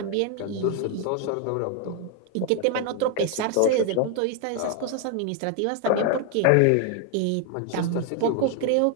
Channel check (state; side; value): different; both; correlation 0.00